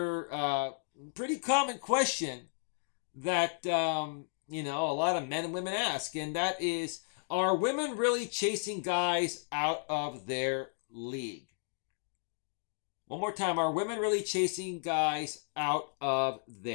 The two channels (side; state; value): right; silent; digital silence